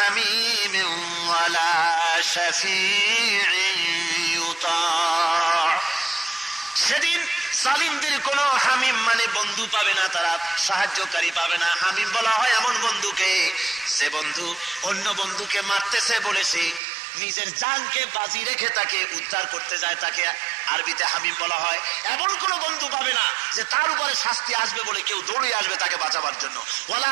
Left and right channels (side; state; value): left; drops out; at 16.8 s